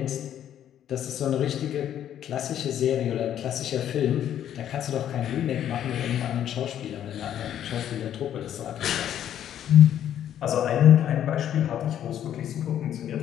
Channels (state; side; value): quieter; right; 10.5 dB